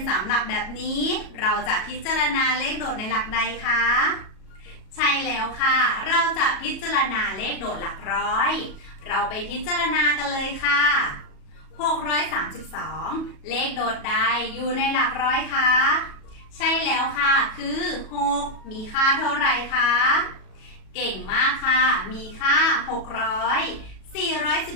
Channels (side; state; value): right; late; 37 ms